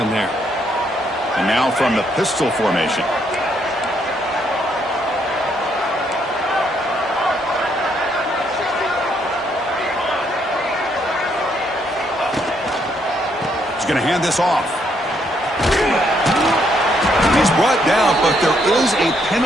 there. And now from the pistol formation. going to hand this off. He's brought down, but there is a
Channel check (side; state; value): both; normal; correlation 0.72